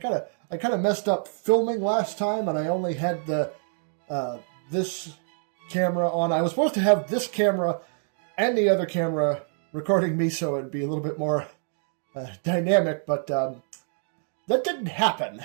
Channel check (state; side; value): silent; left; digital silence